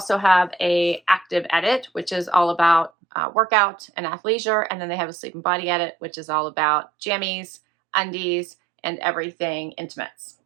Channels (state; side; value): drops out; left; at 2.9 s